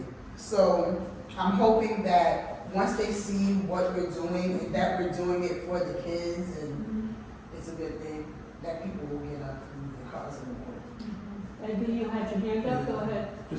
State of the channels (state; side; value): identical; both; correlation 1.00